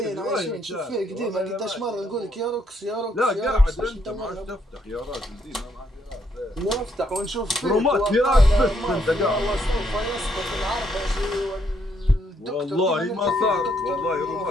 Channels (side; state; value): both; normal; correlation 0.73